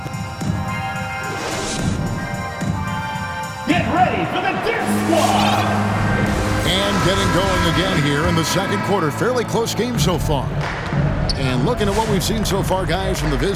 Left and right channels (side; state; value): both; identical; correlation 1.00